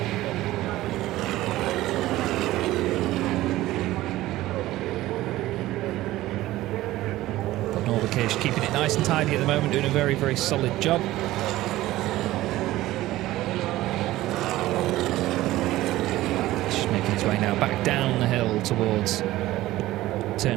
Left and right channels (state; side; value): quieter; left; 16.3 dB